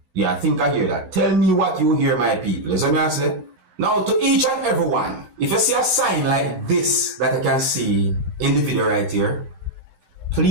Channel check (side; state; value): left; late; 16 ms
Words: Yeah, I think I hear that. Tell me what you hear, my people. You see what I say? Now, to each and everyone, if you see a sign like this that I can see in the video right here,